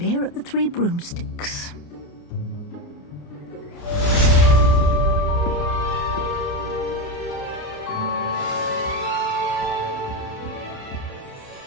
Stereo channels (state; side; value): late; right; 28 ms